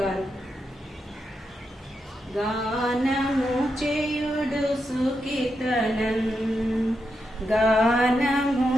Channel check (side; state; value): both; normal; correlation 0.85